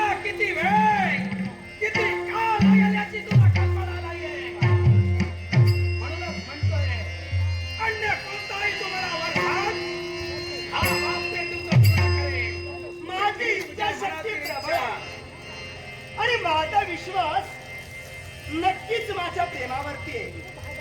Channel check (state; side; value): identical; both; correlation 1.00